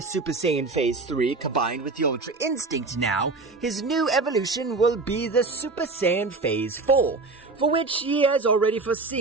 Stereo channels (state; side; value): quieter; left; 3.8 dB